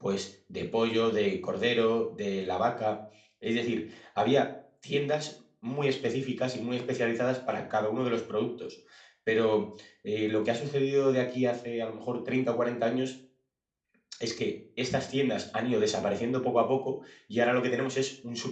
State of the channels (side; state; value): both; identical; correlation 1.00